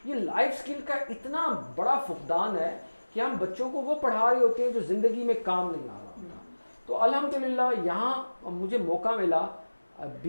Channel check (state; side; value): inverted; both; correlation -1.00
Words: ये लाइफ स्किल का इतना बड़ा फुकदान है कि हम बच्चों को वो पढ़ा रहे होते हैं जो ज़िंदगी में काम नहीं आ रहा होता। तो अल्हम्दुलिल्लाह यहाँ मुझे मौका मिला